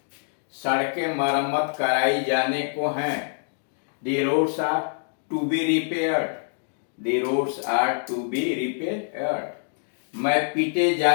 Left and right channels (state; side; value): silent; right; 62 dB below the other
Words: सड़कें मरम्मत कराई जाने को हैं, the roads are to be repaired, the roads are to be repaired. मैं पीटे